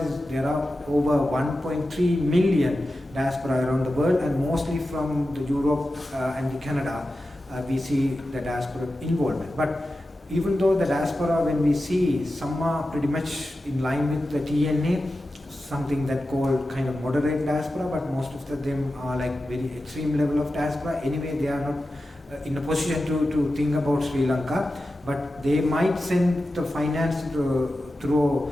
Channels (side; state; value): both; normal; correlation 0.93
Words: is there are over 1.3 million diaspora around the world, and mostly from the Europe and the Canada we see the diaspora involvement. But even though the diaspora, when we see, some are pretty much in line with the TNA, something that called kind of moderate diaspora, but most of them are like very extreme level of diaspora. Anyway, they are not in a position to think about Sri Lanka, but they might send the finance